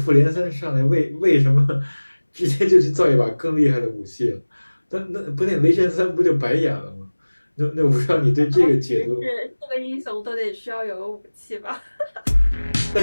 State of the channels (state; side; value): inverted; both; correlation -1.00